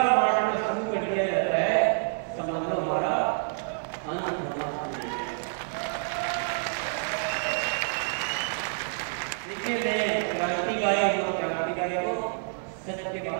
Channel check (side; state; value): left; silent; digital silence